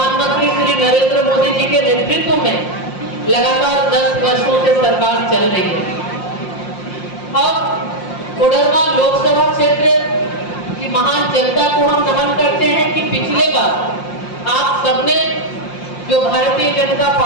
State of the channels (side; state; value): right; late; 5.7 ms